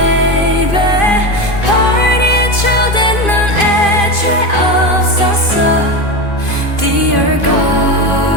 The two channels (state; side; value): late; right; 2.5 ms